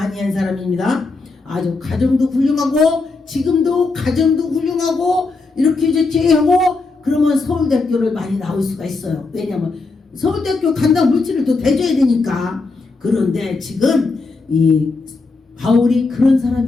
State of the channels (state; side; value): quieter; right; 3.8 dB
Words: 한 사람입니다. 아주 가정도 훌륭하고 지금도 가정도 훌륭하고 이렇게 하고 그러면 서울대학교를 많이 나올 수가 있어요. 왜냐면 서울대학교 간다고 물질을 또 대줘야 되니까. 그런데 지금 이 바울이 그런